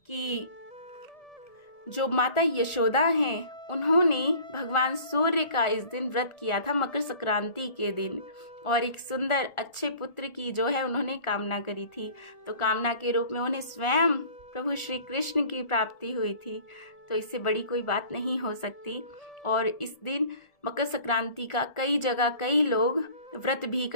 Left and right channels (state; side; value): late; right; 1.4 ms